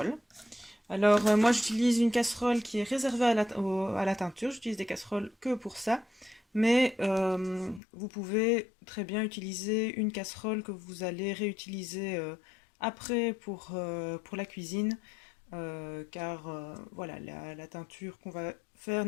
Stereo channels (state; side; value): drops out; right; at 7.8 s